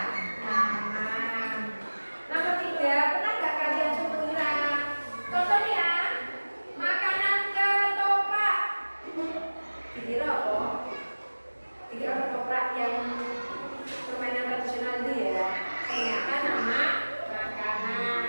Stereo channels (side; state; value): both; inverted; correlation -1.00